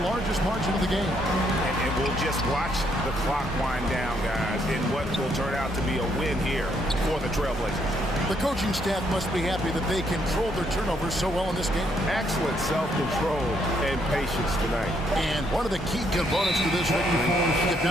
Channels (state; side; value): normal; both; correlation 0.72